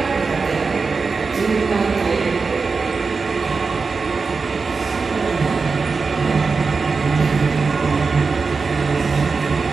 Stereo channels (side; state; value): left; quieter; 4.6 dB